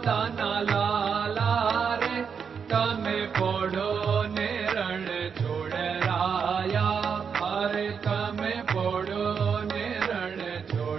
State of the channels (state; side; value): quieter; left; 6.5 dB